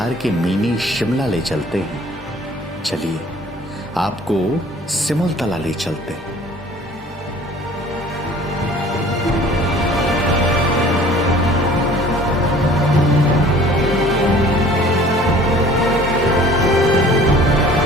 के मिनी शिमला ले चलते हैं। चलिए आपको सिमलतला ले चलते हैं।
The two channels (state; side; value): normal; both; correlation 0.50